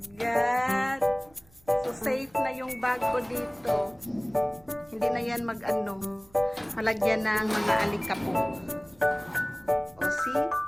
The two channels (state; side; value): noise; right; hum, 29 dB below the sound